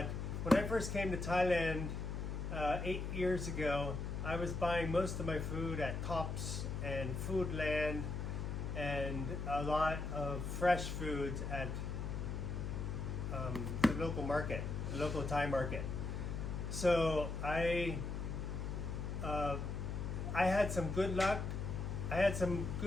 when I first came to Thailand 8 years ago, I was buying most of my food at Tops and Foodland and a lot of fresh foods at the local market, the local Thai market. So I had some good luck. I had some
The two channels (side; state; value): left; noise; hum, 3 dB below the sound